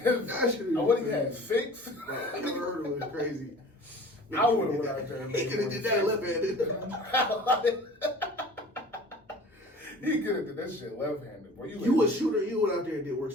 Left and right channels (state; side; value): normal; both; correlation 0.43